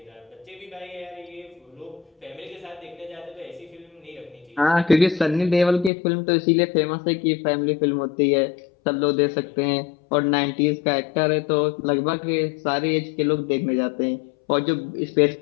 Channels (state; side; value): drops out; right; at 5.9 s